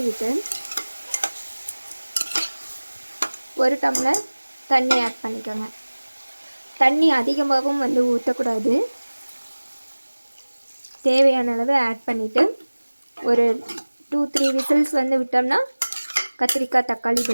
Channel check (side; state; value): both; inverted; correlation -1.00